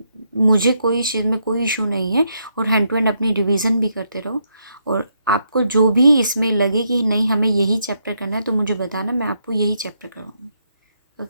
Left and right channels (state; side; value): inverted; both; correlation -0.77